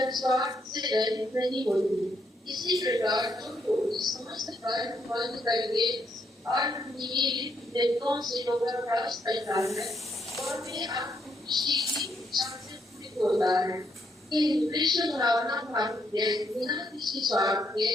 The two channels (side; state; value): both; normal; correlation 0.75